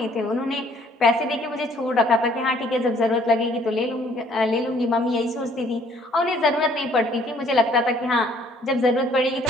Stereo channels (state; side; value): normal; both; correlation 0.60